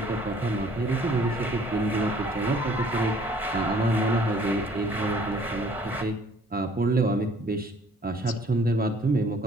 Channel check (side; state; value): both; normal; correlation 0.57